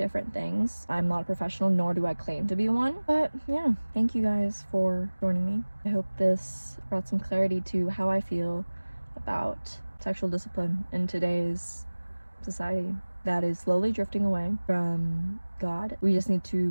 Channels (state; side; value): inverted; both; correlation -1.00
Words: things. I'm not a professional, nor do I claim to be one. But yeah, thank you guys for joining me. I hope this brought some clarity to how I feel about sexual discipline in today's society that is slowly drifting away from God. We just need to